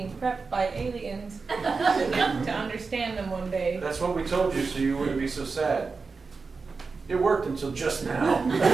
prepped by aliens to understand them one day. That's what we told you, so you wouldn't be so sad. It worked until just now.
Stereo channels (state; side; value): quieter; left; 4.5 dB